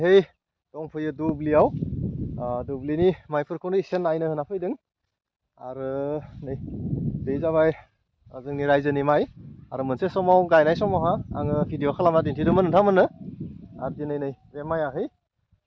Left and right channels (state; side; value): identical; both; correlation 1.00